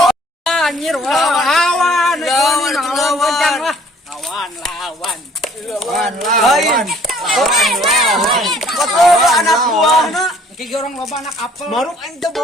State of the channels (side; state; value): both; normal; correlation 0.57